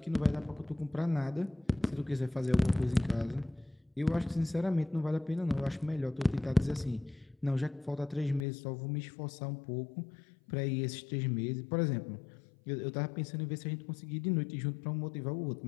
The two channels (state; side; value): drops out; right; at 8.5 s